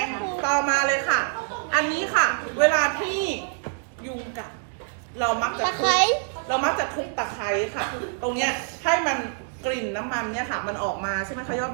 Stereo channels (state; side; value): silent; left; 61 dB below the other